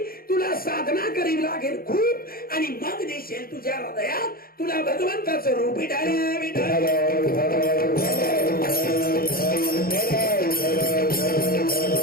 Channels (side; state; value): right; late; 0.43 ms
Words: तुला साधना करावी लागेल खूप आणि मग दिसेल तुझ्या हृदयात तुला भगवंताचं रूप. विठाला विठाला.